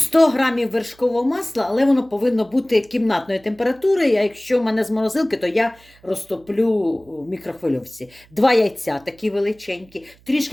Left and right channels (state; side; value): noise; right; hum, 29 dB below the sound